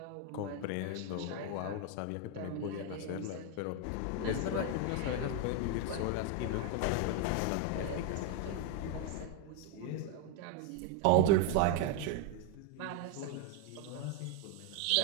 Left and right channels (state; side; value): different; both; correlation 0.01